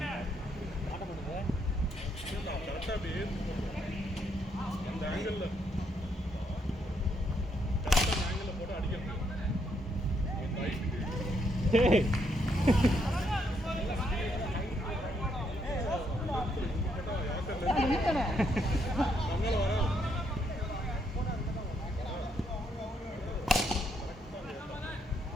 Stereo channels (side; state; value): both; normal; correlation 0.75